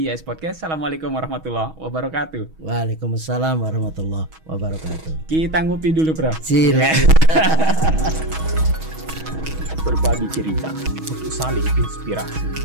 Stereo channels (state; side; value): late; left; 6.3 ms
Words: YS Podcast. Assalamualaikum warahmatullahi wabarakatuh. Waalaikumsalam warahmatullahi wabarakatuh. Kita ngopi dulu, Bro. Silakan. Berbagi cerita untuk saling inspirasi.